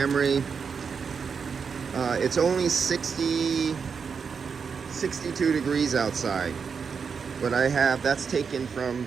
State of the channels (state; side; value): quieter; left; 6.0 dB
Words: It's only 62 degrees outside, but I have, that's taken from